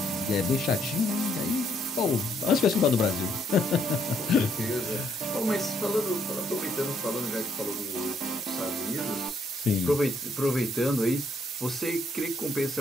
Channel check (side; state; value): both; normal; correlation 0.71